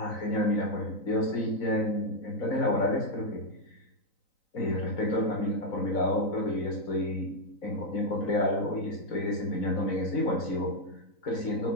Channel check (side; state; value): right; late; 3.9 ms